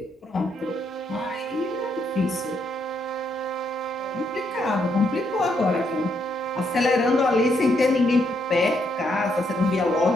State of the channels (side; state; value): both; normal; correlation 0.76